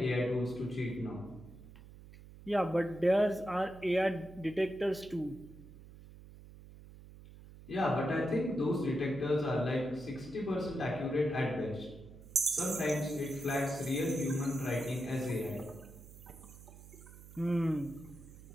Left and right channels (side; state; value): right; noise; hum, 18 dB below the sound